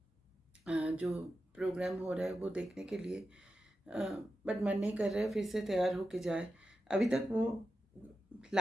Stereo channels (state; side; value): normal; both; correlation 0.90